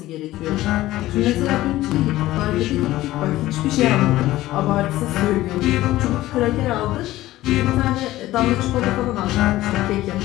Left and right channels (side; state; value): right; quieter; 16.1 dB